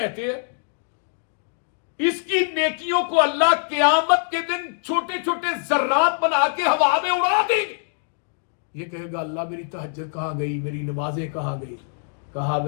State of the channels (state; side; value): silent; right; digital silence